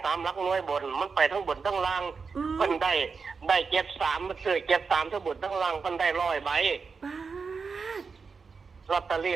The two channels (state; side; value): quieter; left; 5.1 dB